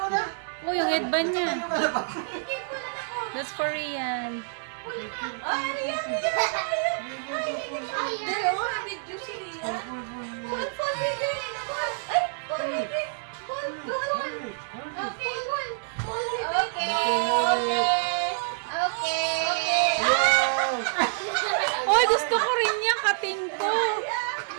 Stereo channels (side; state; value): left; silent; digital silence